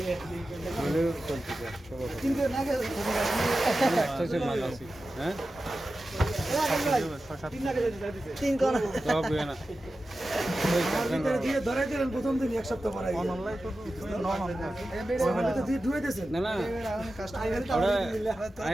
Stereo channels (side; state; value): both; normal; correlation 0.93